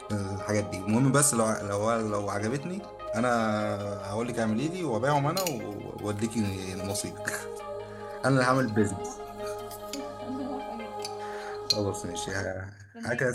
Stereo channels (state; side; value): identical; both; correlation 1.00